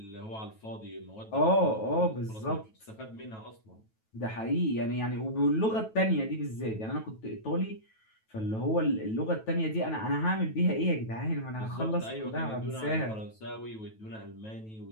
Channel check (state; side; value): late; right; 9.2 ms